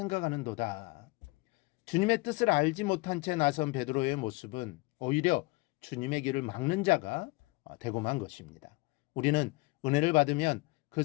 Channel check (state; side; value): quieter; right; 24.6 dB